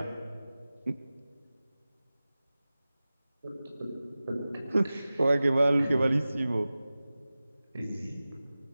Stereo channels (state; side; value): inverted; both; correlation -0.96